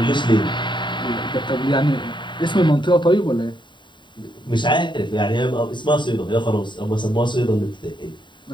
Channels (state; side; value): late; right; 0.23 ms